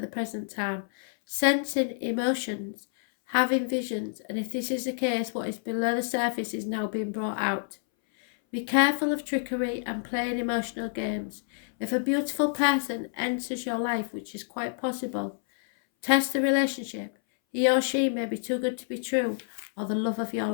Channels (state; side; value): silent; right; 59 dB below the other